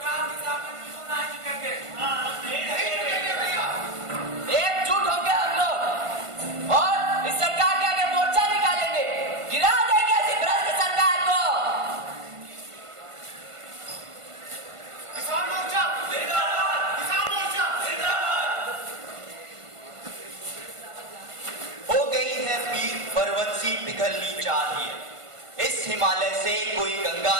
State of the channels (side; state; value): left; late; 1.5 ms